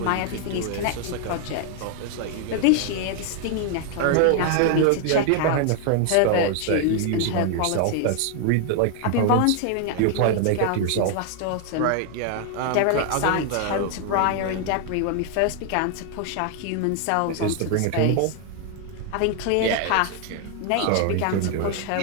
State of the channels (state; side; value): different; both; correlation 0.00